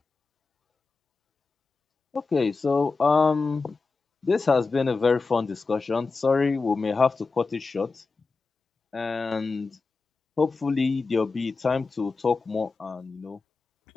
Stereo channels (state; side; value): quieter; right; 4.1 dB